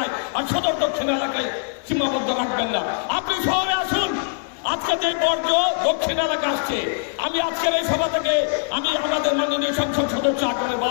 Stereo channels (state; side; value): silent; right; 64 dB below the other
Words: আর সদর দক্ষিণ এলাকায় সীমাবদ্ধ রাখবেন না। আপনি শহরে আসুন। আজকে যে বর্জ্য দক্ষিণ এলাকা আসছে, আমি আজকের এই সভা থেকে আমি আমাদের মাননীয় সংসদ সদস্য আকারে